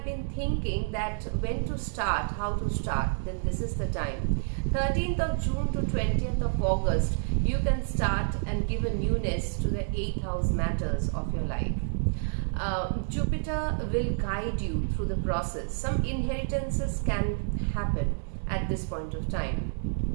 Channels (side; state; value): left; silent; 59 dB below the other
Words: been thinking that when to start, how to start, then this is the time. 13th of June to 20th of August, you can start and give a newness to the 8th house matters of your life. Jupiter will guide you through the process. Some inheritances can happen at this point of time.